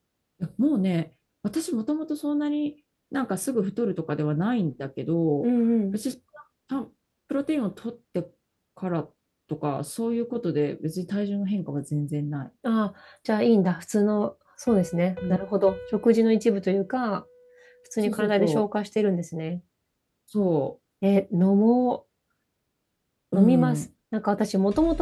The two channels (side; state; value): both; identical; correlation 1.00